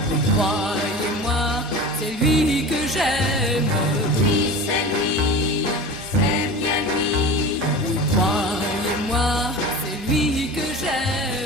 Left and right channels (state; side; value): normal; both; correlation 0.33